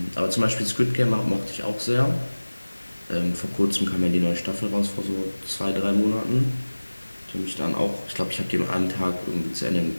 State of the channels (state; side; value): inverted; both; correlation -1.00